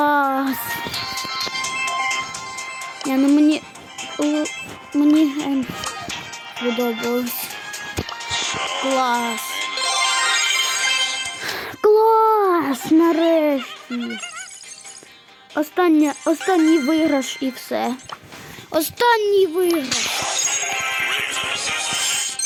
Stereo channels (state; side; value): identical; both; correlation 1.00